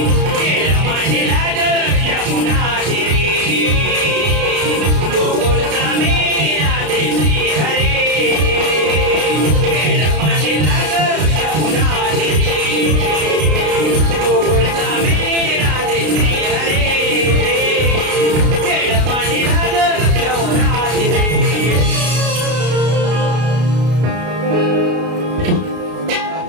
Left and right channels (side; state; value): left; late; 33 ms